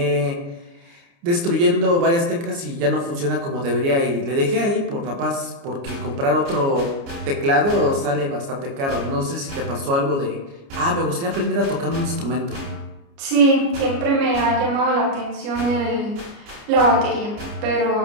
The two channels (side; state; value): left; late; 29 ms